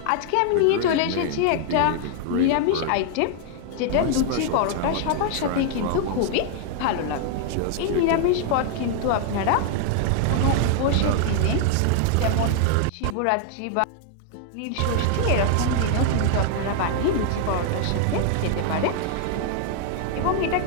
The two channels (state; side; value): different; both; correlation 0.00